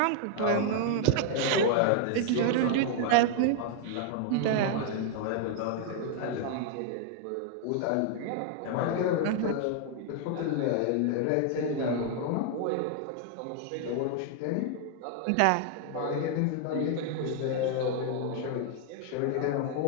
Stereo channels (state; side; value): different; both; correlation 0.00